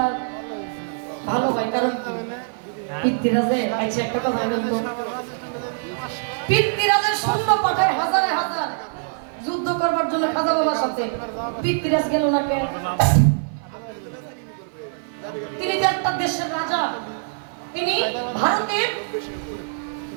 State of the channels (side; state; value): left; silent; 56 dB below the other